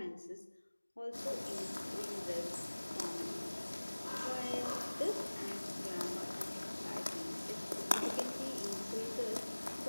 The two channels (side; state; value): both; inverted; correlation -1.00